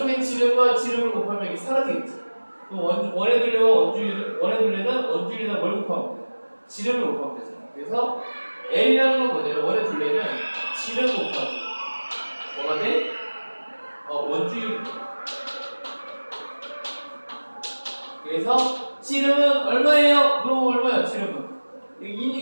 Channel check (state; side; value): inverted; both; correlation -1.00